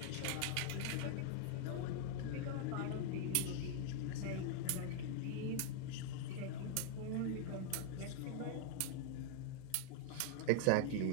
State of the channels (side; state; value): both; different; correlation 0.00